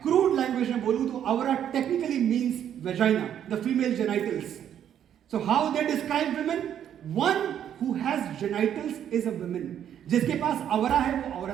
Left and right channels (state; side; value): quieter; left; 9.8 dB